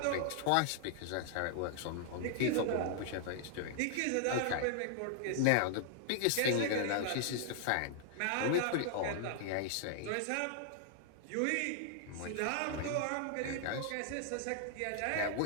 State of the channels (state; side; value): different; both; correlation 0.00